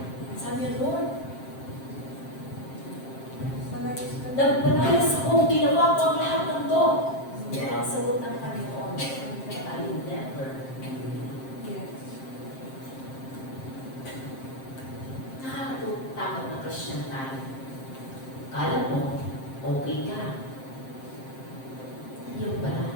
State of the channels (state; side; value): late; right; 7.6 ms